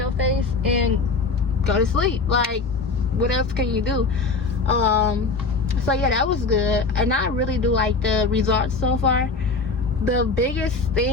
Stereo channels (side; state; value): right; quieter; 4.1 dB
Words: face and go to sleep. Like, what else can you do? So yeah, that was good, and I really do like the results so far. The biggest